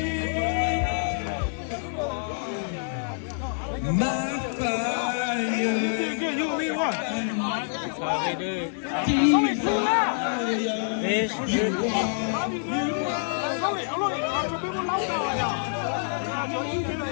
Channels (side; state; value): right; silent; 60 dB below the other